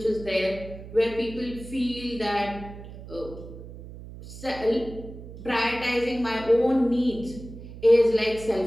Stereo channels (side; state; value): right; noise; hum, 14 dB below the sound